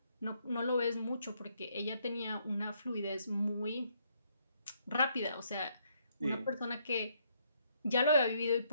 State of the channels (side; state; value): both; inverted; correlation -0.72